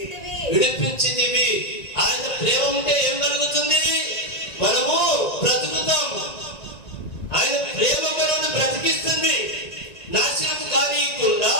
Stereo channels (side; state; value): right; late; 1.9 ms